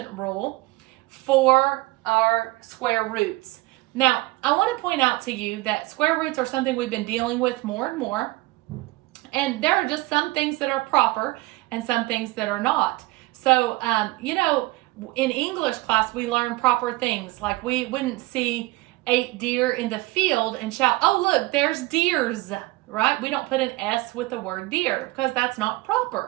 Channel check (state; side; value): quieter; left; 20.9 dB